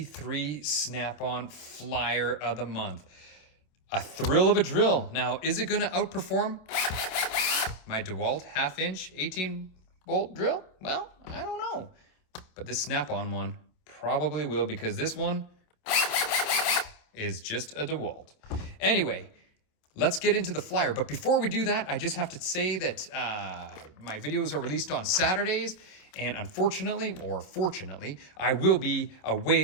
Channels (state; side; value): late; right; 27 ms